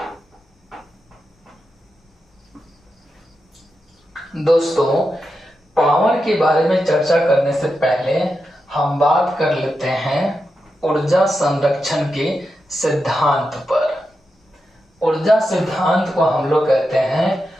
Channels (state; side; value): normal; both; correlation 0.88